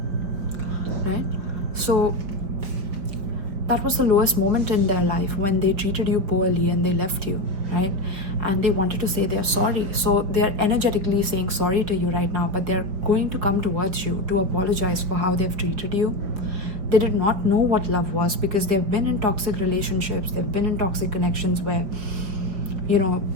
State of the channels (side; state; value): left; late; 5.4 ms